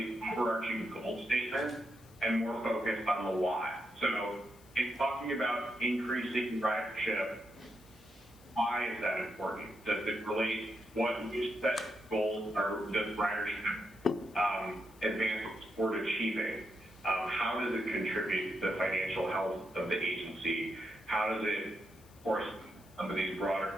overarching goal statements and more focused on the why. So in talking about increasing ridership, why is that important? Does it relate what new set goals or does ridership advance toward achieving? How does it contribute to the financial health of the agency? How does it, of course, some of these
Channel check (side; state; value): left; noise; hiss, 26 dB below the sound